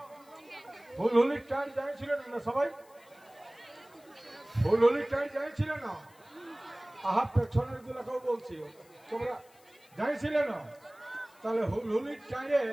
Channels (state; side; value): noise; left; hiss, 28 dB below the sound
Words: হুলহুলির টাইম যাইছিলেন না সবাই, হুলহুলির টাইম যাইছিল না, আহা পেছনের গুলাকেও বলছি তোমরা যাইছিলে না, তাহলে হুলহুলির টাইমে